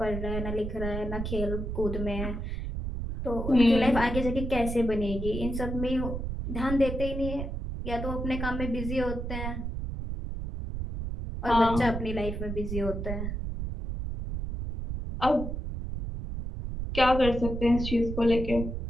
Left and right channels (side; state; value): right; noise; rumble, 4 dB below the sound